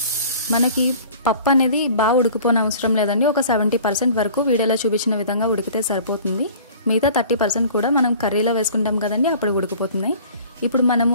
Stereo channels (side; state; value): both; inverted; correlation -0.47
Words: మనకి పప్పు అనేది బాగా ఉడికిపోని అవసరం లేదండి. ఒక 70% వరకు వీడియోలో చూపించిన విధంగా ఉడికితే సరిపోతుంది. మిగతా 30% కూడా మనం కర్రీలో వేసుకుంటాం కదండి, అప్పుడు ఉడికిపోతుంది. ఇప్పుడు మనము